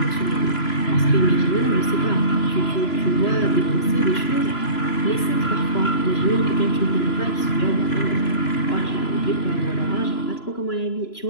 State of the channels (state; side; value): late; right; 3.0 ms